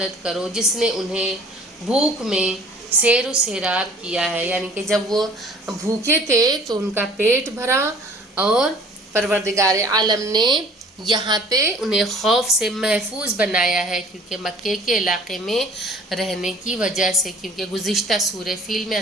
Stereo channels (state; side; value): normal; both; correlation 0.51